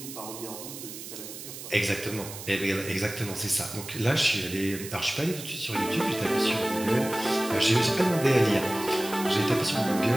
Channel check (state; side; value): noise; right; hiss, 11 dB below the sound